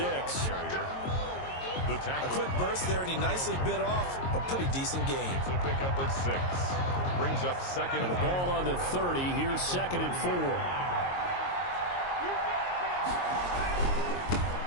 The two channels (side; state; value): right; late; 22 ms